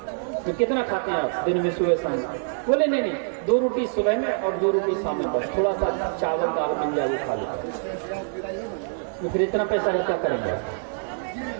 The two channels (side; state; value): left; silent; digital silence